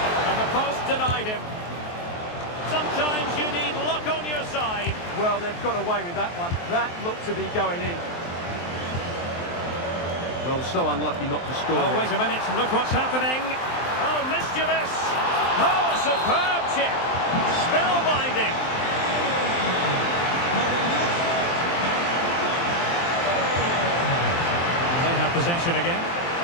And the post denied him. Sometimes you need luck on your side. Well, they've got away with that one. That looked to be going in. Well, so unlucky not to score. Oh, wait a minute. Look what's happening. Oh, mischievous. Oh, a superb chip. Spellbinding. They have possession again.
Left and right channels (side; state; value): right; late; 23 ms